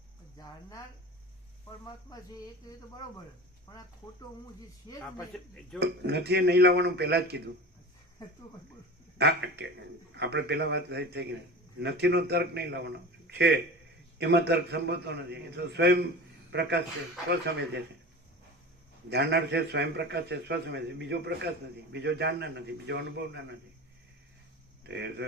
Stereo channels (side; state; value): both; normal; correlation 0.32